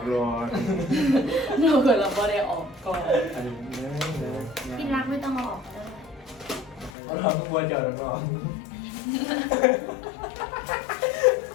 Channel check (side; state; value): right; drops out; at 7.0 s